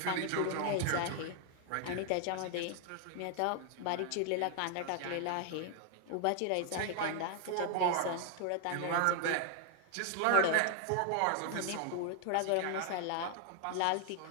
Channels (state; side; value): different; both; correlation 0.00